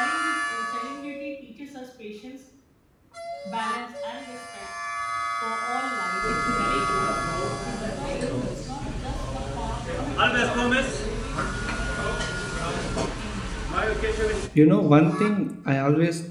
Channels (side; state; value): both; identical; correlation 1.00